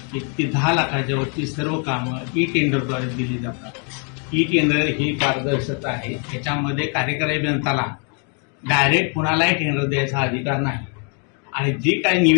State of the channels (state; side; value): quieter; right; 38.8 dB